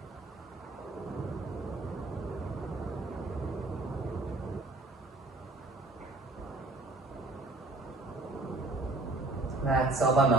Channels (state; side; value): quieter; left; 3.1 dB